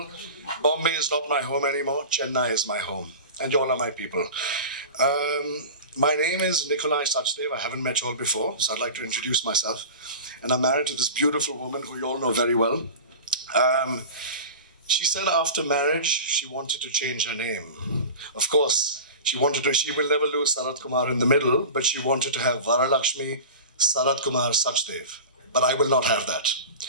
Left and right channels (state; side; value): inverted; both; correlation -0.33